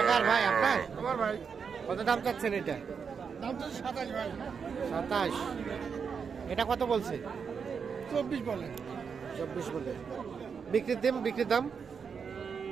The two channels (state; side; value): quieter; left; 6.2 dB